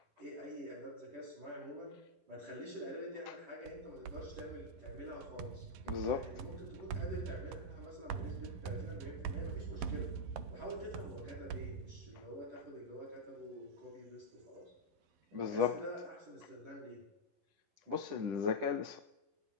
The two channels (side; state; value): left; late; 10 ms